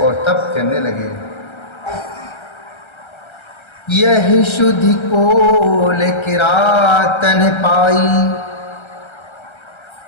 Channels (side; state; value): right; late; 1.3 ms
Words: तप करने लगे। यही शुद्धि कोल किरातन पाई,